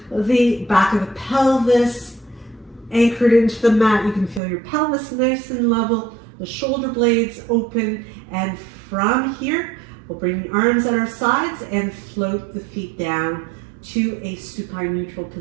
the back of the pelvis anchored into the mat. You can feel your pelvis nice and level, the shoulder blades open, and from here we'll bring the arms at our sides and float the feet down to a supine neutral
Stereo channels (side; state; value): left; drops out; at 4.4 s